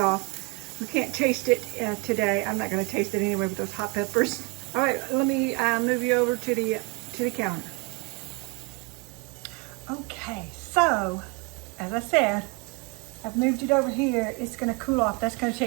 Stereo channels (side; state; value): left; quieter; 31.0 dB